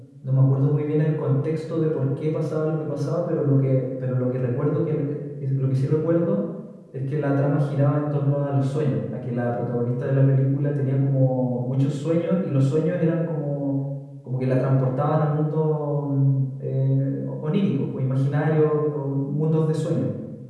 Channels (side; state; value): both; identical; correlation 1.00